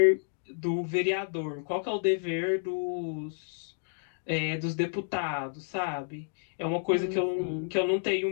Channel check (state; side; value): silent; right; digital silence